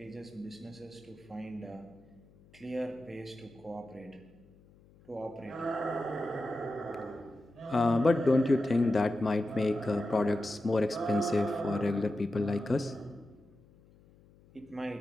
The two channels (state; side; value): noise; left; hum, 27 dB below the sound